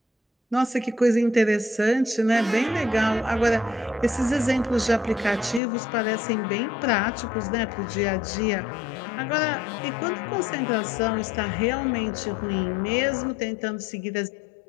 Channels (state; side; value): drops out; right; at 5.6 s